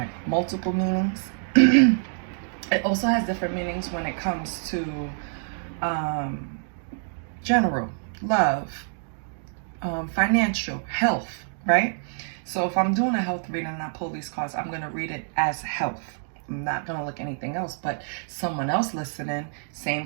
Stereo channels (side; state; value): left; silent; digital silence